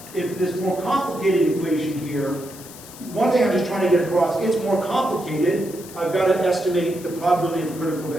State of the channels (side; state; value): left; noise; hiss, 17 dB below the sound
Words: if this more complicated equation here. One thing I'm just trying to get across, it's more complicated. I've got to estimate the probability of a critical